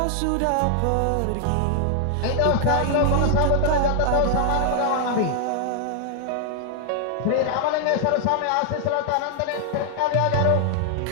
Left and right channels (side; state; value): both; different; correlation 0.00